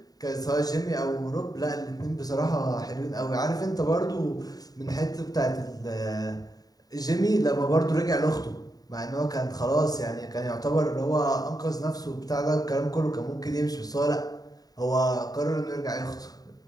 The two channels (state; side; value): late; right; 0.18 ms